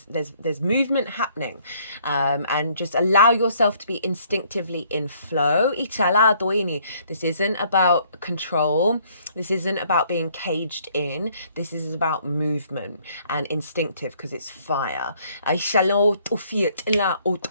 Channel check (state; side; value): inverted; both; correlation -0.63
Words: movement happening, and just allow yourself to be instinctively in flow. This isn't about control. This isn't about being caged in. This is about movement and instinctive, because it's fire. And the